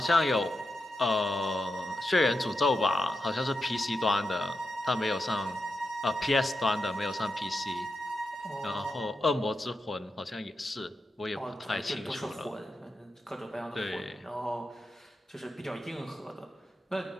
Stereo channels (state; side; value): normal; both; correlation 0.88